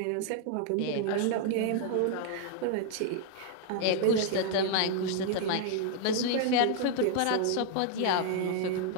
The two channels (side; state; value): both; different; correlation 0.00